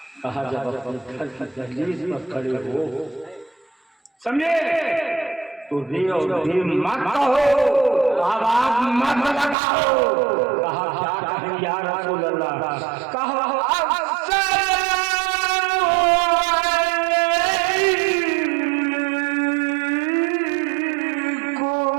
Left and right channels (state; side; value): drops out; left; at 9.6 s